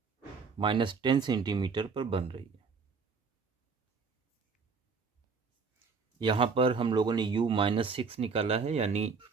-10 सेंटीमीटर पर बन रही है। यहाँ पर हम लोगों ने u -6 निकाला है, यानी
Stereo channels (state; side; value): quieter; left; 5.1 dB